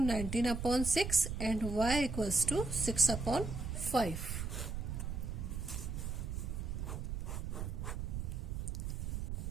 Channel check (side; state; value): right; noise; rumble, 3 dB below the sound